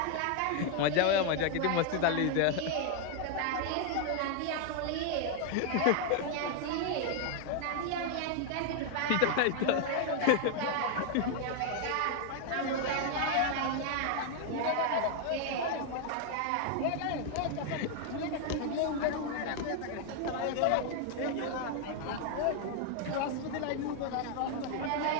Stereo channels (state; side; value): different; both; correlation 0.00